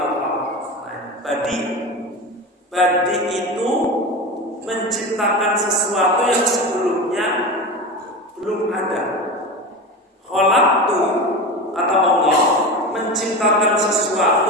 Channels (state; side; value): normal; both; correlation 0.25